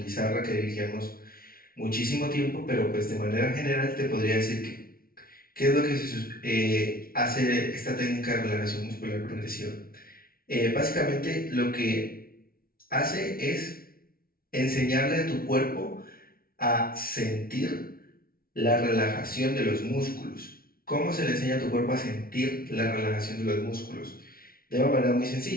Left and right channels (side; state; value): right; late; 0.43 ms